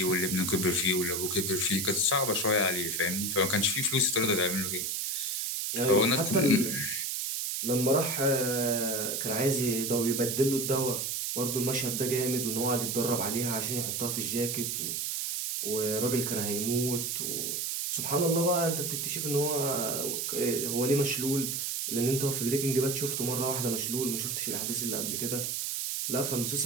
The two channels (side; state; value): right; noise; hiss, 1 dB below the sound